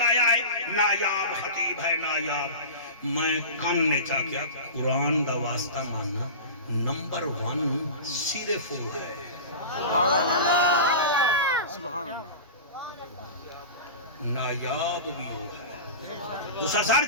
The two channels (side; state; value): both; inverted; correlation -0.31